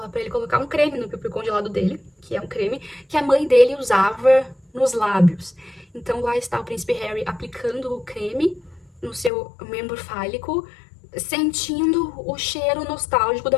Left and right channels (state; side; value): drops out; right; at 9.3 s